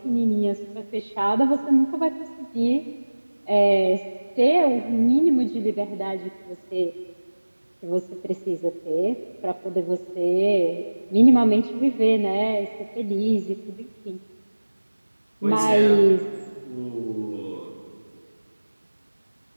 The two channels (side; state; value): both; inverted; correlation -1.00